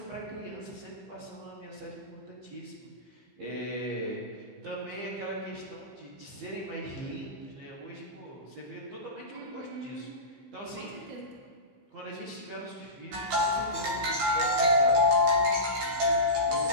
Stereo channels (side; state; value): left; late; 15 ms